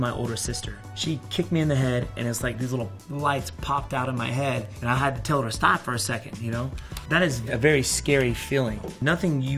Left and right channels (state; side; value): identical; both; correlation 1.00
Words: older sister. She kicked me in the head, and it's like these little lights popped out of my head, and I had to tell her to stop for a second, you know? That is a very scary feeling. Nothing